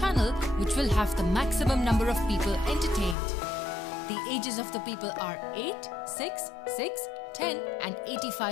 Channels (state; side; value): drops out; right; at 3.2 s